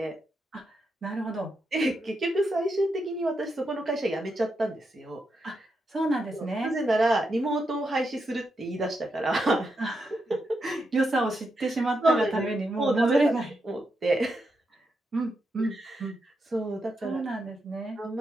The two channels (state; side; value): normal; both; correlation 0.84